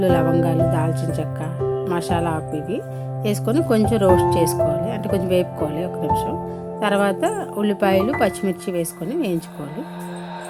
లవంగాలు, దాల్చిన చెక్క, మసాలా ఆకు ఇవి వేసుకొని కొంచెం రోస్ట్ చేసుకోవాలి, అంటే కొంచెం వేపుకోవాలి ఒక నిమిషం. తర్వాత ఉల్లిపాయలు, పచ్చిమిర్చి వేసుకొని వేయించుకోవాలి.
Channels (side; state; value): both; identical; correlation 1.00